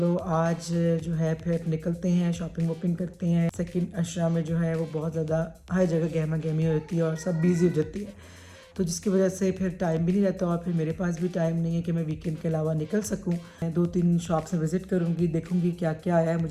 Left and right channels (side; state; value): both; identical; correlation 1.00